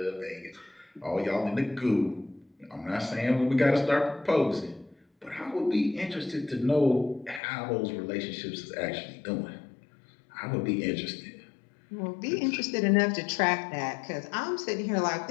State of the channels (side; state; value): right; drops out; at 7.4 s